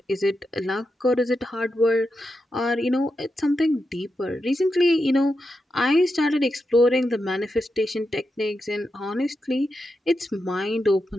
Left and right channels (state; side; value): normal; both; correlation 0.87